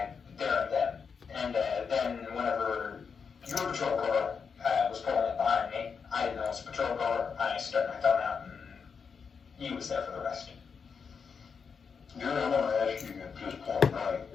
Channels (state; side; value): quieter; right; 5.9 dB